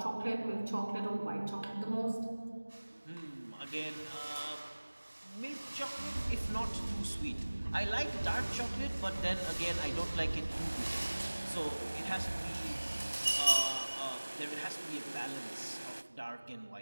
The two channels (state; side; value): inverted; both; correlation -1.00